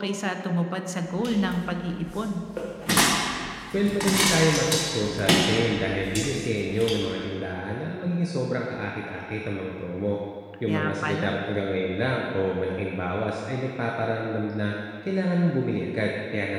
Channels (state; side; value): identical; both; correlation 1.00